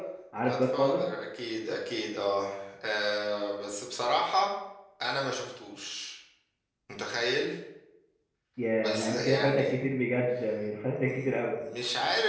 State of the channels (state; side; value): identical; both; correlation 1.00